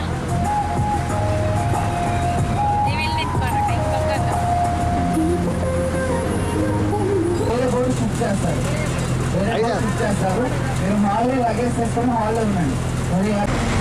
చేస్తారు. మీరు హాల్లో లగేజ్ చేసుకొని హాల్లో ఉండండి. మరి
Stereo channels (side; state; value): both; identical; correlation 1.00